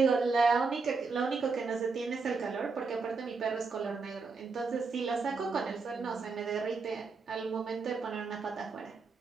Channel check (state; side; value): quieter; left; 4.5 dB